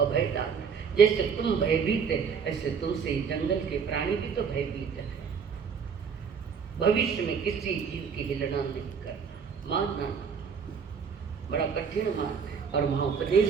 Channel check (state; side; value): quieter; left; 6.3 dB